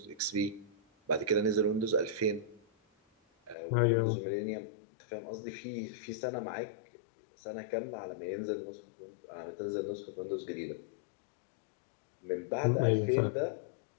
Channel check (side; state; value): right; drops out; at 3.6 s